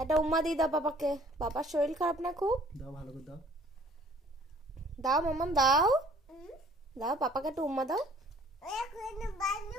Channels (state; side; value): normal; both; correlation 0.55